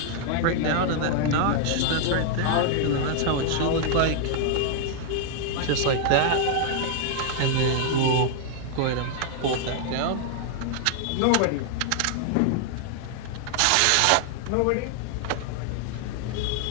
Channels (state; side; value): different; both; correlation 0.00